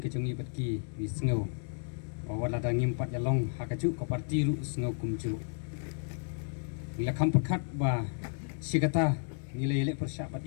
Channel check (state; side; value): silent; right; digital silence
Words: patki wisngau bawala dangim pat yalong hakacu ko parti ru sngau kumcu ila kam perkat ba sigata nilai elek persyak pat